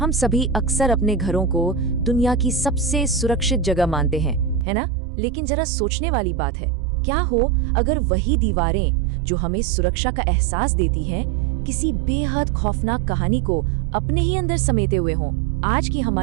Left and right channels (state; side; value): drops out; left; at 4.7 s